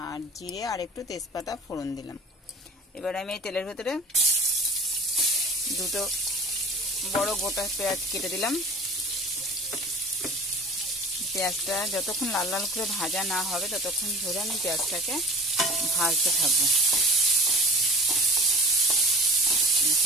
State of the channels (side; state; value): both; normal; correlation 0.41